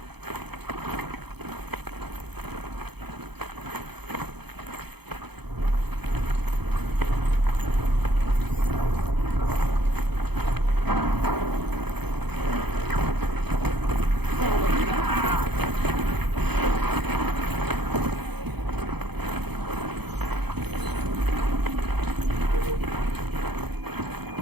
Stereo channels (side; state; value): left; late; 0.98 ms